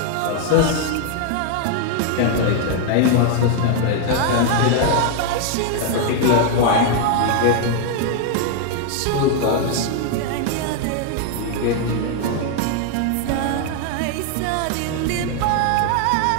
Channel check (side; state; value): both; different; correlation 0.00